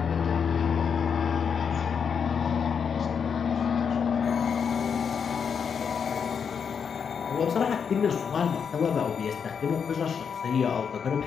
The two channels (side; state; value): right; quieter; 6.7 dB